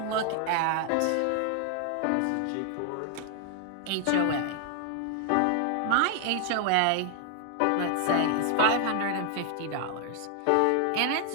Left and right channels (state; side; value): different; both; correlation 0.00